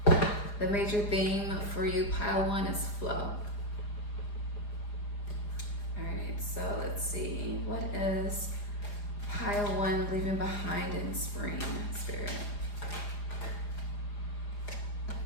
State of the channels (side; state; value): right; late; 4.9 ms